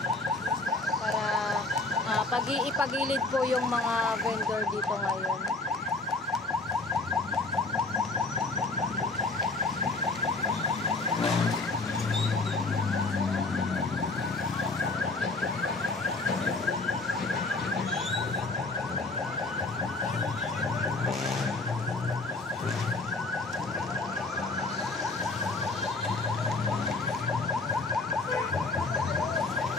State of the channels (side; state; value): right; quieter; 3.3 dB